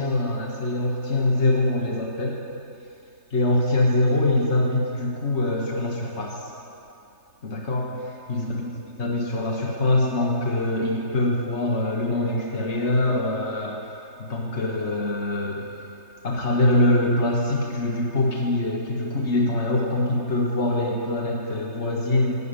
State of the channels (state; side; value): late; right; 3.3 ms